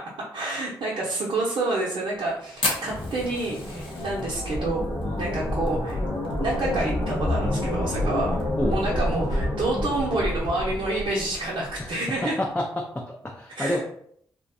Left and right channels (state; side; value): normal; both; correlation 0.67